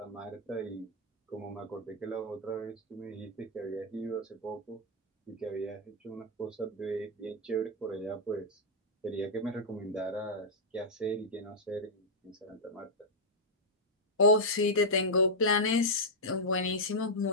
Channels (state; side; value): normal; both; correlation -0.06